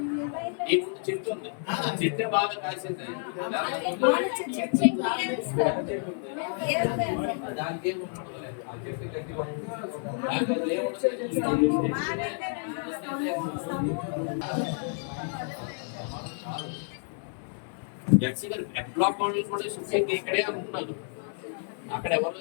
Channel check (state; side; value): silent; right; 58 dB below the other